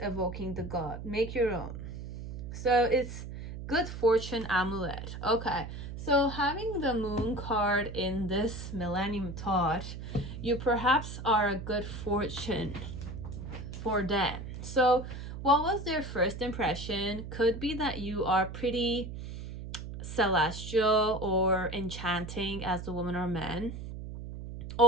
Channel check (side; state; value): right; noise; hum, 9 dB below the sound